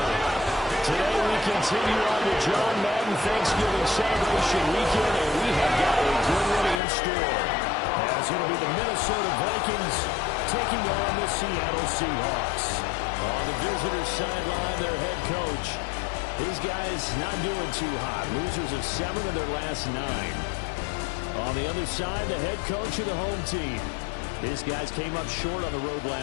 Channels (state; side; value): drops out; right; at 6.8 s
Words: Today we continue on the John Madden Thanksgiving celebration weekend, and we have got a good one in store. As it'll be the Minnesota Vikings taking on the Seattle Seahawks. On the visitor's sideline, their head coach. These guys not doing too hot. Losers of 7 of their last 9. On the other side, the head coach of the home team. These guys came up short on the road